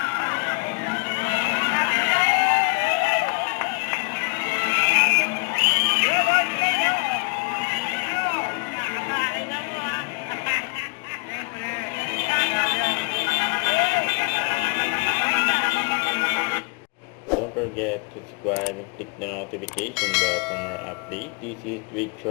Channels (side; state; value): right; quieter; 32.9 dB